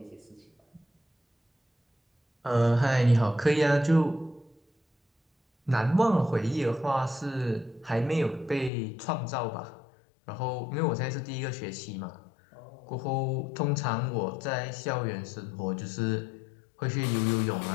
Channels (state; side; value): drops out; right; at 8.7 s